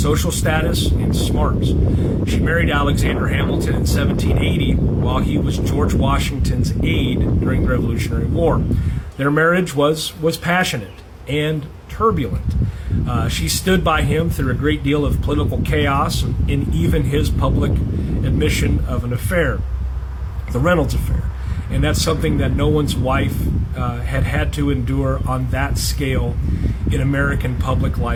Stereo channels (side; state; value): both; identical; correlation 1.00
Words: status and smarts. She married Alexander Hamilton in 1780 while he was George Washington's aide during the Revolutionary War. Their marriage was passionate and turbulent. She stood by him through a great deal of political chaos and even his public admission of an affair, the Reynolds affair. And that's something that no one's wife had to endure on that scale in American public